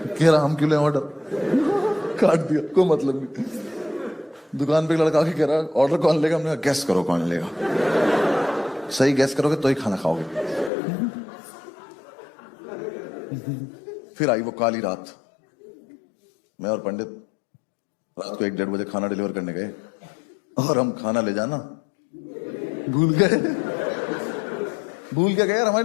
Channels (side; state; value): right; drops out; at 10.7 s